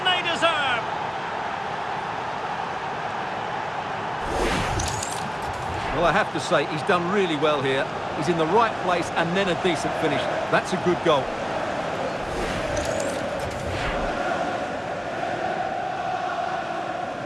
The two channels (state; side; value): identical; both; correlation 1.00